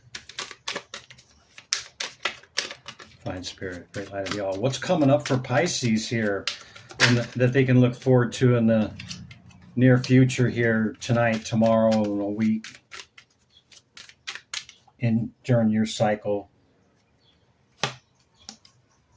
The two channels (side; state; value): both; identical; correlation 1.00